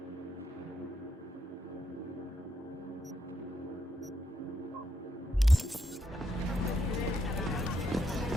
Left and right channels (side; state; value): both; normal; correlation 0.79